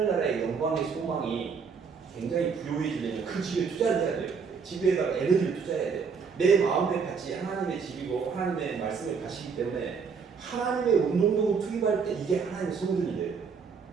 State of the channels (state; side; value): quieter; left; 5.7 dB